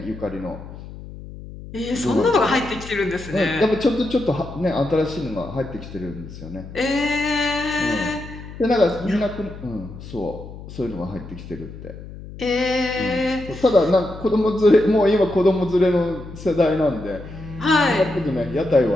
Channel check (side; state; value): left; noise; hum, 14 dB below the sound